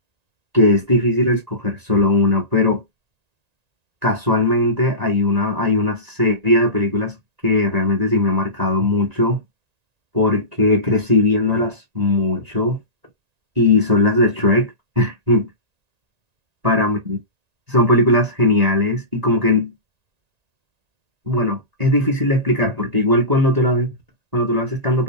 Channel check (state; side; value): late; left; 1.9 ms